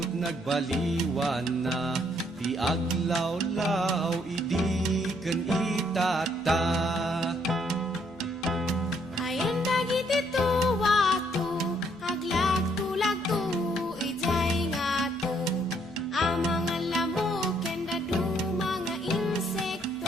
nagbaliwan na, ti aglawlaw idi ken itata. Ayan dagiti tuwato, aglag-tulagto, ijay nga to. Ang mga lamok, ken dadu mga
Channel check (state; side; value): normal; both; correlation 0.69